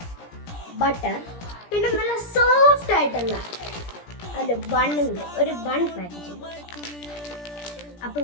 ബട്ടർ, പിന്നെ നല്ല സോഫ്റ്റ് ആയിട്ടുള്ള ഒരു ബണ്ണുണ്ട്, ഒരു ബൺ പാക്കറ്റ്.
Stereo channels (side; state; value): right; late; 17 ms